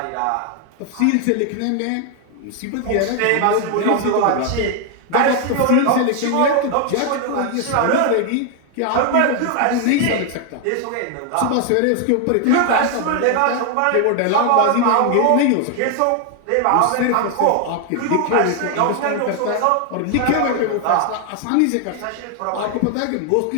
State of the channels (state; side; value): different; both; correlation 0.00